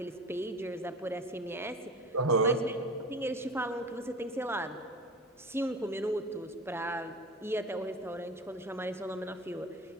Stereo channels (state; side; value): normal; both; correlation 0.33